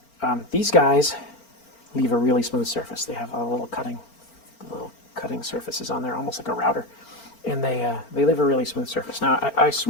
them. These guys leave a really smooth surface. They have a little cutting surfaces on there, almost like a router, and they leave a really smooth surface. Now I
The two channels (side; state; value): right; late; 4.4 ms